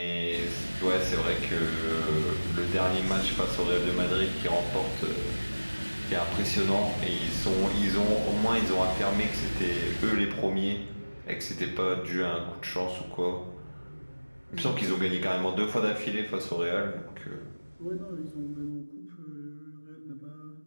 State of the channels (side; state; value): both; inverted; correlation -1.00